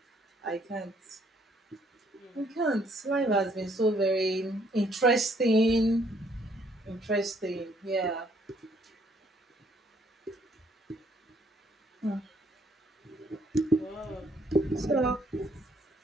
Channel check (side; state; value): both; normal; correlation 0.66